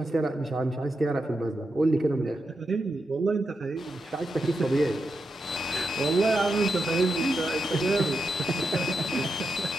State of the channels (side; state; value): both; normal; correlation 0.86